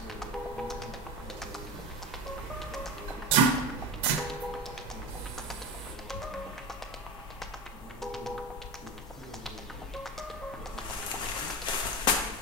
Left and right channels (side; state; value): both; normal; correlation 0.23